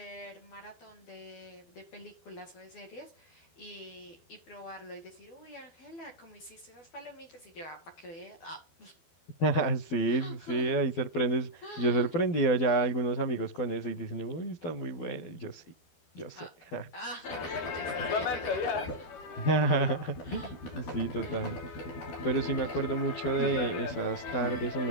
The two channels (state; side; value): late; right; 12 ms